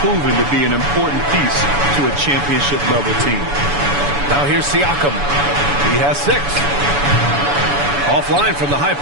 proven to be an important piece to a championship-level team. Now here's Siakam. He has 6. Offline from the high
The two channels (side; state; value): left; late; 7.0 ms